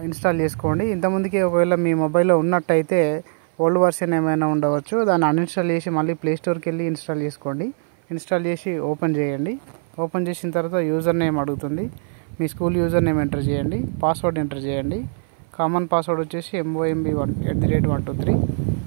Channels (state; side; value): silent; left; 57 dB below the other